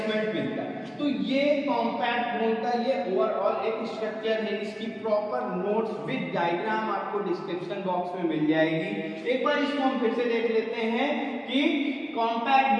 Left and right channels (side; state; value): both; identical; correlation 1.00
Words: मिलता है। तो ये कॉम्पैक्ट बोन का ये ओवरऑल एक स्ट्रक्चर है। इसकी प्रॉपर नोट्स विद डायग्राम आपको डिस्क्रिप्शन बॉक्स में मिल जाएगी। एक बार इसको हम फिर से देख लेते हैं कि कॉम्पैक्ट